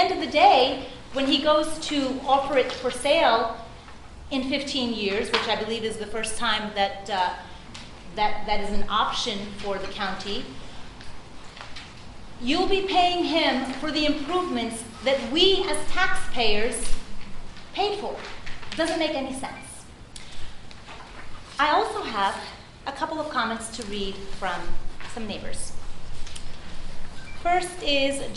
of the day, when he goes to offer it for sale in 15 years, which I believe is the first time that that is an option for the county, you'll be paying him for the improvements that we as taxpayers paid for. It doesn't make any sense. I also have a couple of comments to read from some neighbors. First is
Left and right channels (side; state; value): both; identical; correlation 1.00